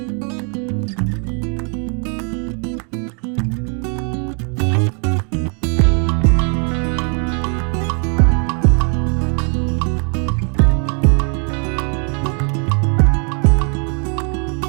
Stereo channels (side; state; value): left; quieter; 39.6 dB